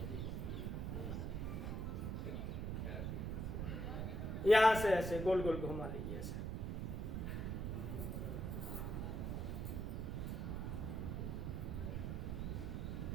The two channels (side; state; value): right; noise; rumble, 1 dB below the sound